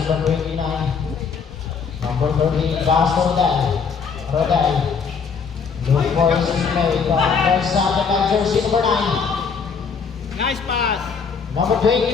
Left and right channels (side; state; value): right; quieter; 5.8 dB